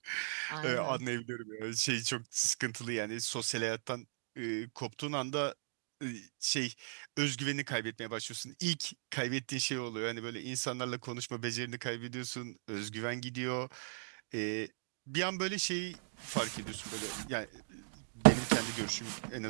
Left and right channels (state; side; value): silent; left; digital silence